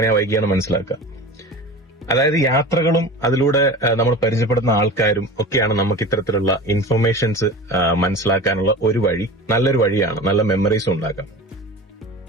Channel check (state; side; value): normal; both; correlation 0.34